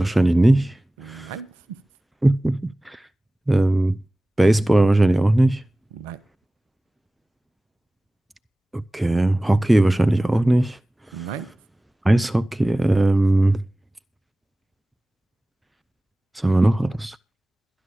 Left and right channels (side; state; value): both; normal; correlation 0.98